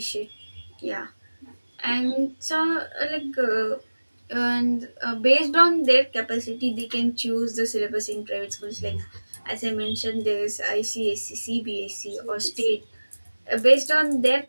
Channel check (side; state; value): both; inverted; correlation -1.00